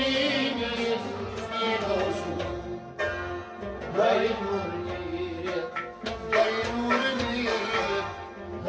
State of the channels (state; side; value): identical; both; correlation 1.00